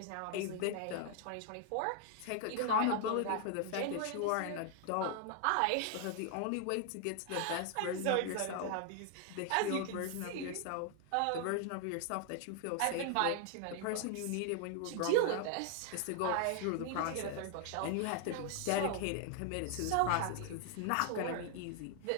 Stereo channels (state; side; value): different; both; correlation 0.00